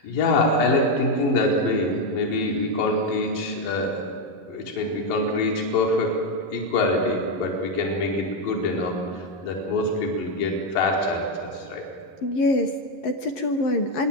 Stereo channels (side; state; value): right; late; 11 ms